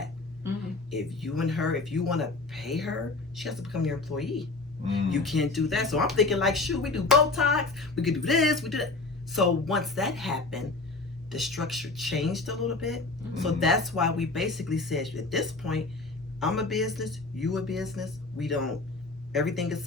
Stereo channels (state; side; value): quieter; right; 3.4 dB